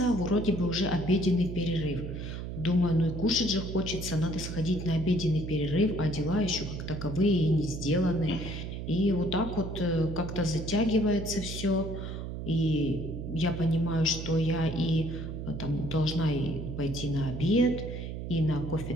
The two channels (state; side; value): noise; right; hum, 6 dB below the sound